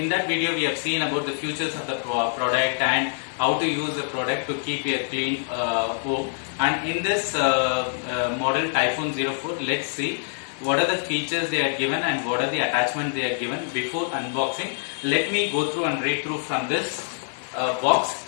that video we have seen about the features of the product and how to use the product to keep a clean home. And in this model Typhoon 04, let's see what are the features they are given and what are the attachments they are given. Before unboxing, let me go through and read through from this box.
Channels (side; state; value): right; silent; digital silence